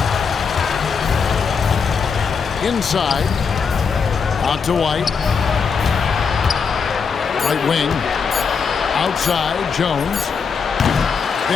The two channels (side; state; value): right; quieter; 5.8 dB